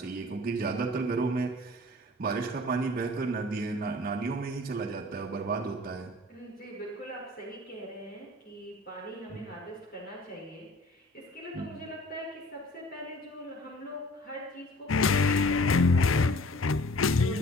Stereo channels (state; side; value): normal; both; correlation 0.48